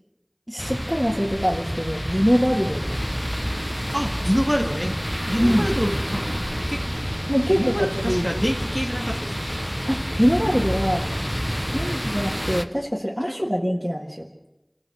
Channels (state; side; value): identical; both; correlation 1.00